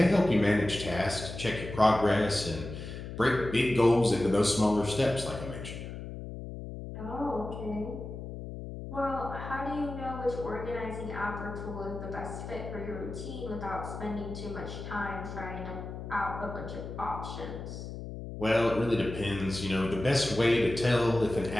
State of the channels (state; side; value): noise; left; hum, 9 dB below the sound